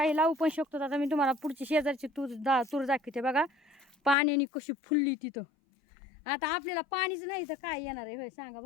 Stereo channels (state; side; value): drops out; right; at 4.2 s